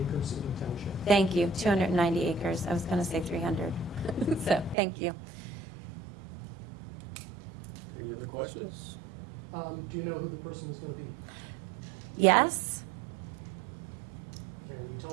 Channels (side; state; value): left; drops out; at 4.8 s